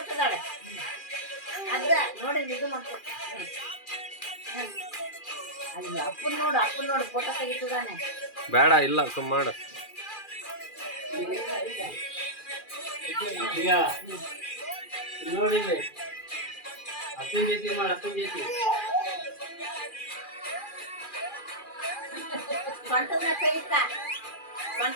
ಅದ ನೋಡಿ ಇದು ಮಾಡ್ಕೊ ಅಲ್ಲಿ ಅಪ್ಪನ್ ನೋಡು ಫೋಟೋ ತೆಗಿತದಾನೆ ಬೇಡ ಇಲ್ಲ ಸುಮ್ಮ ಮಾಡು ಈಗ ನೋಡಿ ಅಪ್ಪನ ಜೊತೆ ಮಾಡಿ ಅಪ್ಪನ ಜೊತೆ ಸ್ವಂತದ ಮೇಲೆ ತೆಗಿತ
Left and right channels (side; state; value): right; late; 2.4 ms